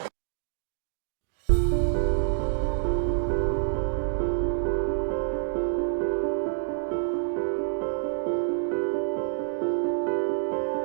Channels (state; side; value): silent; left; digital silence